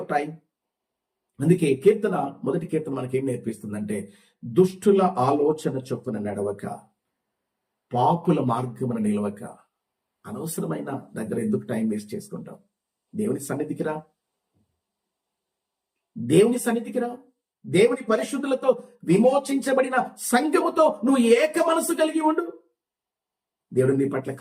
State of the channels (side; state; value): both; identical; correlation 1.00